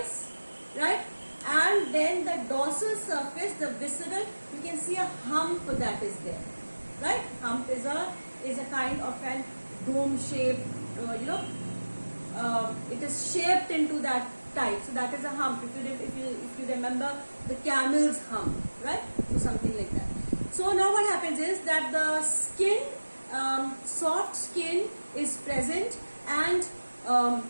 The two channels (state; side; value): inverted; both; correlation -1.00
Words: right? And then the dorsal surface, the visceral, you can see a hump that is there, right? Hump is a kind of an dome shape, it is shaped into that type. So that is a hump. If you remember the camel's hump, right? So something like that. So now what happens is that the skin, soft skin is present, and